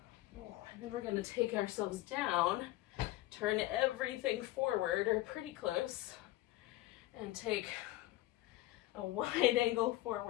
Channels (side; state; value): right; quieter; 16.8 dB